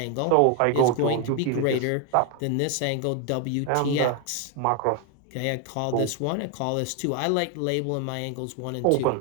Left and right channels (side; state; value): both; different; correlation 0.01